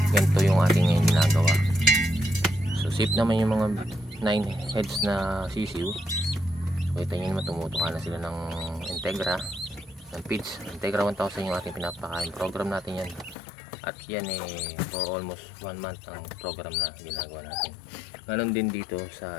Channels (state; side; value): drops out; right; at 13.4 s